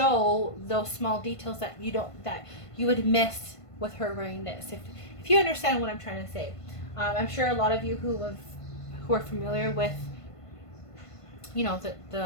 those small details that you would miss with her wearing this, if you understand what I'm trying to say. I'm sure a lot of you who are familiar with, you know,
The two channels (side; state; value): right; late; 1.5 ms